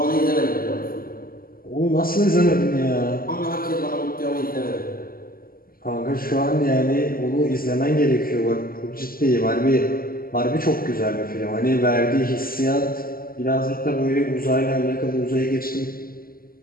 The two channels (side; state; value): right; late; 0.42 ms